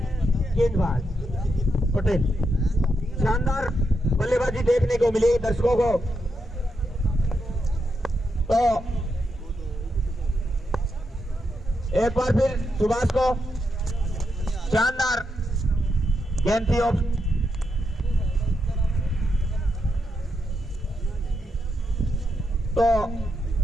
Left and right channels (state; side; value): normal; both; correlation 0.83